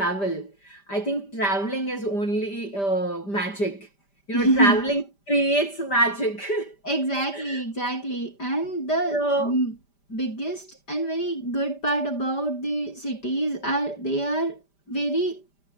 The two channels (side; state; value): right; late; 5.0 ms